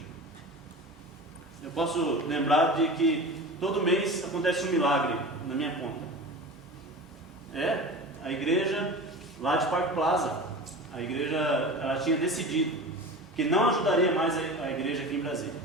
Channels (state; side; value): normal; both; correlation 0.32